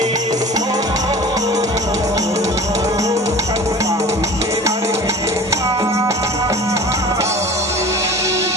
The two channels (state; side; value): normal; both; correlation 0.40